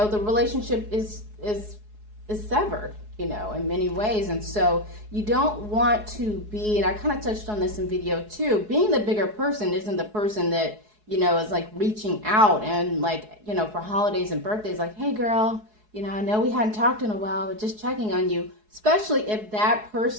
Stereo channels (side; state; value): left; late; 4.7 ms